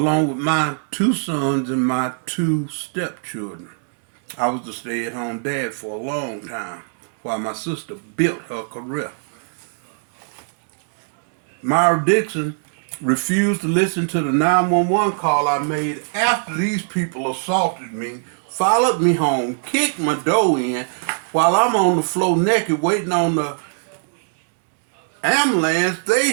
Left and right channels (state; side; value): silent; left; digital silence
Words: with my 2 sons and my 2 stepchildren. I was the stay-at-home dad for a long time while my sister built her career. Myra Dixon refused to listen to the 911 call I made after these people assaulted me, followed me home, kicked my door in while I'm on the floor naked waiting on the ambulance.